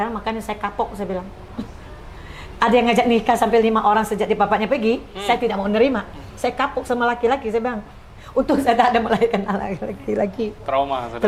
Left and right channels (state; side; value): identical; both; correlation 1.00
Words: makanya saya kapok, saya bilang. Ada yang ngajak nikah sampai 5 orang sejak di bapaknya pergi, saya tidak mau nerima. Saya kapok sama laki-laki, saya bilang. Untung saya tak ada melahirkan anak laki-laki.